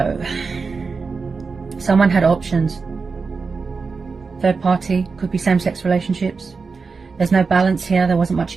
someone had options. Third party, could be same-sex relationships. There's no balance here, there wasn't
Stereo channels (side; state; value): left; quieter; 4.7 dB